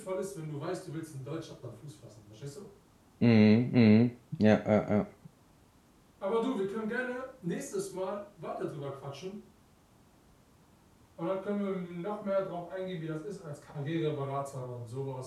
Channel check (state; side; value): identical; both; correlation 1.00